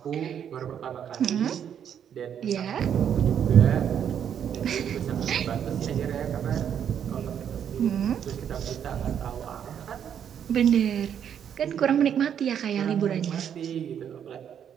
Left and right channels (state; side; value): quieter; left; 8.8 dB